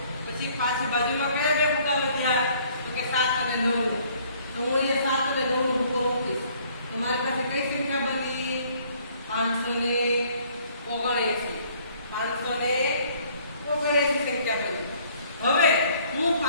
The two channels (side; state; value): both; inverted; correlation -0.60